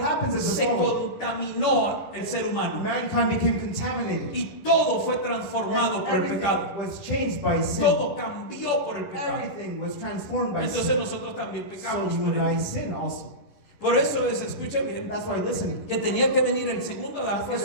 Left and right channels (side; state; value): right; late; 10 ms